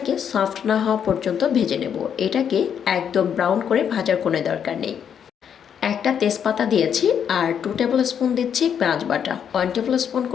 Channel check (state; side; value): quieter; right; 8.2 dB